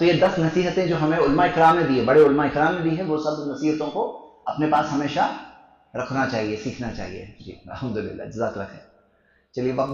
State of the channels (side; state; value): both; identical; correlation 1.00